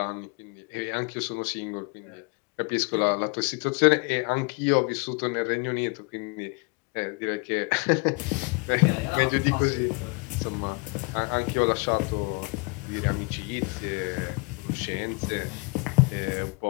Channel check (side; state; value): right; quieter; 30.5 dB